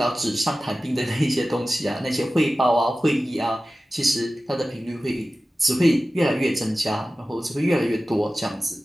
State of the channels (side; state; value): both; normal; correlation 0.95